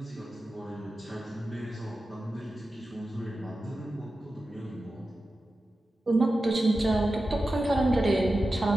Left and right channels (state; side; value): normal; both; correlation 0.93